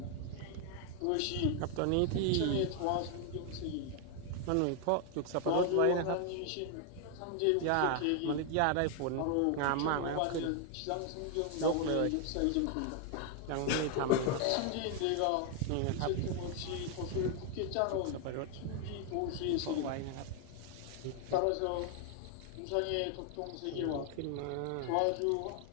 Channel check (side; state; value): both; different; correlation 0.00